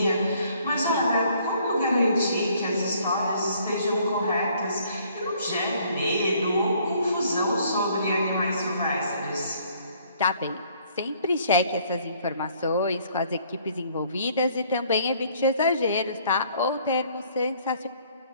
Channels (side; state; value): both; inverted; correlation -0.61